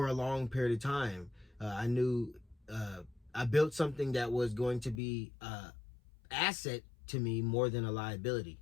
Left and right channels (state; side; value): drops out; right; at 5.0 s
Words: a long period of time. I knew I built something that was going to be an asset to me more than a liability.